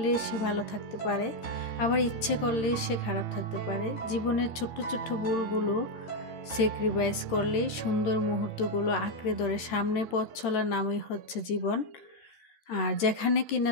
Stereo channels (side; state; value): right; late; 13 ms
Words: সে ভালো থাকতে পারে, আবার ইচ্ছে করলে সে খারাপ থাকতে পারে। জীবনের ছোট্ট ছোট্ট ভুলগুলো স্যাক্রিফাইস করলেই সুন্দর মুহূর্তগুলো আঁকড়ে ধরে সামনে পথ চলার নামই হচ্ছে জীবন। আর যেখানে কিনা